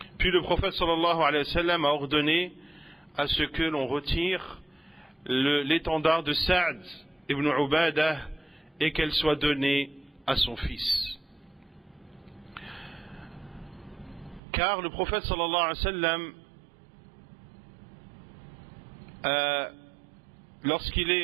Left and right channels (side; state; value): left; drops out; at 14.4 s